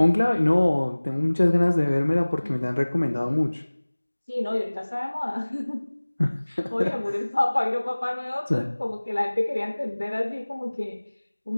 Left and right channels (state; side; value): inverted; both; correlation -1.00